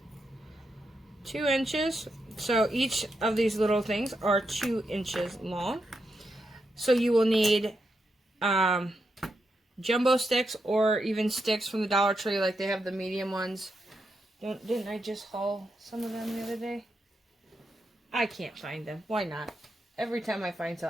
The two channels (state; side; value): normal; both; correlation 0.84